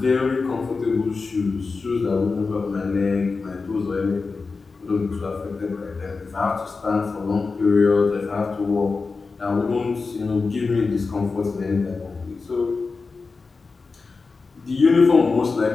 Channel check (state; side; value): quieter; right; 4.3 dB